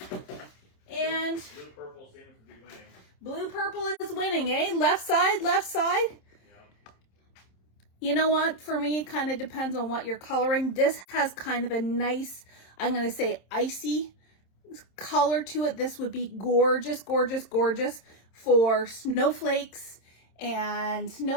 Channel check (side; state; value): right; late; 27 ms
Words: And blue purple seems to be winning. Blue purple is winning, eh? Left side, left side. Yeah. You know what? For me, it kind of depends on what you're coloring. This has kind of a nice, I'm going to say icy color to it. This would be gorgeous, gorgeous, gorgeous for snowflakes and